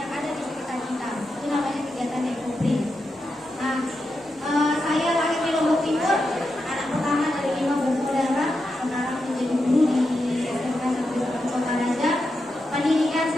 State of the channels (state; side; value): normal; both; correlation 0.87